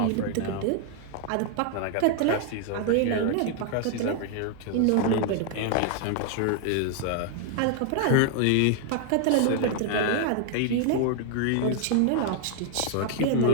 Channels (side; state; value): both; different; correlation 0.00